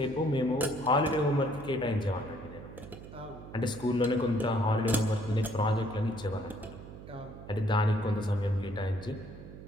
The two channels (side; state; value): right; noise; hum, 14 dB below the sound